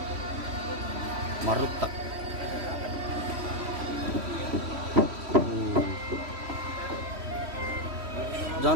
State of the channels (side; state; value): left; late; 3.1 ms